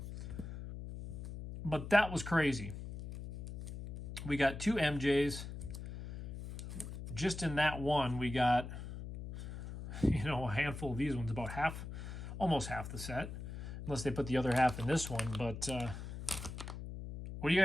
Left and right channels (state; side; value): noise; left; hum, 9 dB below the sound